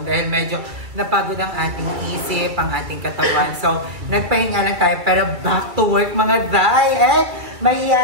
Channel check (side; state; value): left; late; 2.3 ms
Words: dahil medyo napagod ang ating isip, ang ating katawan. So nagpahinga lang tayo pero back to work mga Jai! And may